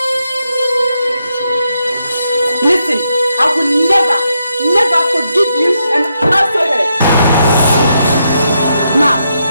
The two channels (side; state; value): both; inverted; correlation -0.81